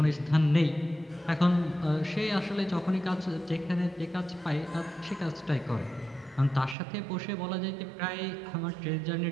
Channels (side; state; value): left; drops out; at 6.8 s